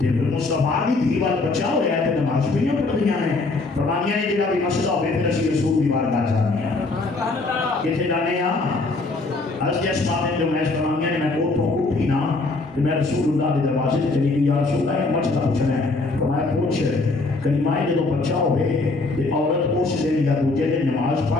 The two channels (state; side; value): quieter; right; 3.4 dB